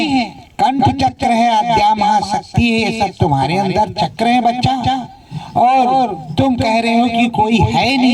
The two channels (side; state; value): both; identical; correlation 1.00